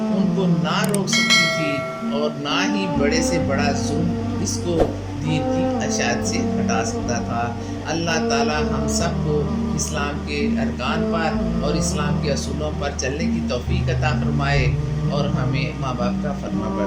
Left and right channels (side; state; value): both; identical; correlation 1.00